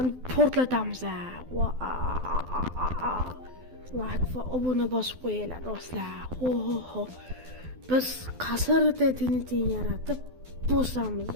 portlatamiz. Like va obuna bosib qo'yinglar do'stlar. Ho. Biz qasrda tinitin yaratib bosamiz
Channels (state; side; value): late; left; 12 ms